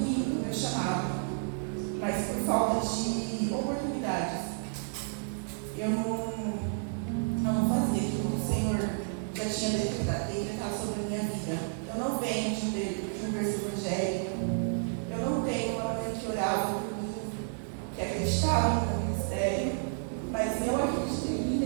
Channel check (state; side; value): silent; left; digital silence